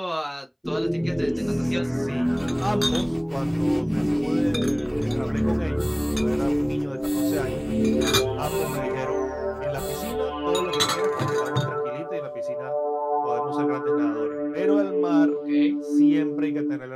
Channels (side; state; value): both; identical; correlation 1.00